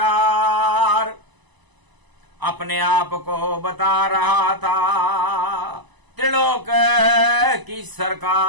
अपने आप को बता रहा था त्रिलोक की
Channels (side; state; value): left; late; 1.0 ms